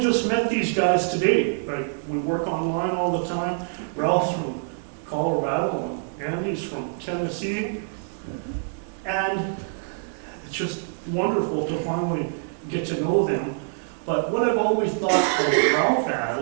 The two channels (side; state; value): left; silent; digital silence